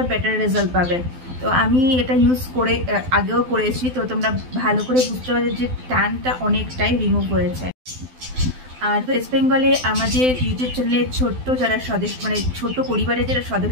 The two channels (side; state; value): left; late; 12 ms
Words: বেটার রেজাল্ট পাবে। তো আমি এটা ইউজ করে আগেও করেছি, তো তোমরা ভালো করে বুঝতে পারছো যে ট্যানটা অনেকটাই রিমুভ হয়েছে। আর ওয়েস্ট বেঙ্গলে আমাদের ইউটিউব চ্যানেলে ছোট্ট যারা সদস্য ছোট পরিবারের যারা